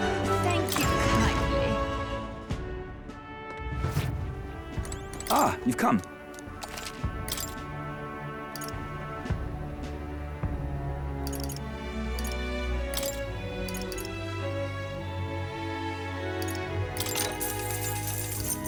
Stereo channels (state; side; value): identical; both; correlation 1.00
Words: Thank you kindly. Ah, you've come.